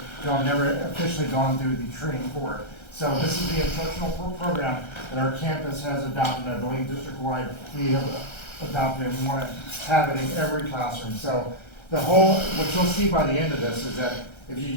I've never officially gone through the training for it. So this is the instructional program that our campus has adopted. I believe district-wide we have adopted and want to have it in every classroom. So what you'll see by the end of this is that if you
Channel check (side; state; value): right; late; 1.3 ms